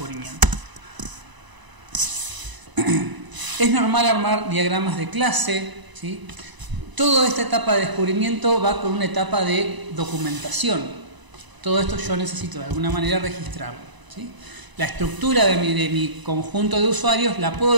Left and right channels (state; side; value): late; left; 1.0 ms